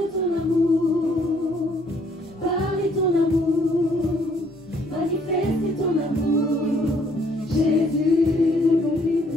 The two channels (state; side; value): normal; both; correlation 0.65